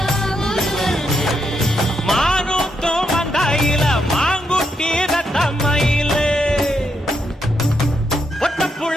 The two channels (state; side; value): normal; both; correlation 0.80